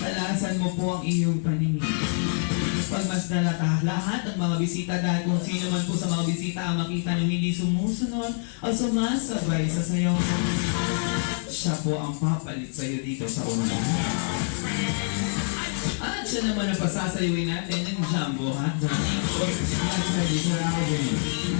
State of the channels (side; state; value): right; silent; 61 dB below the other